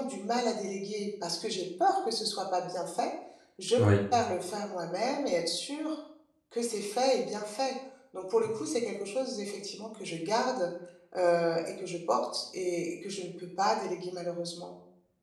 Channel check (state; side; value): identical; both; correlation 1.00